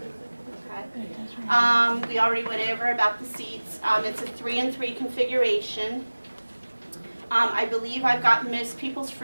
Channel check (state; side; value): inverted; both; correlation -1.00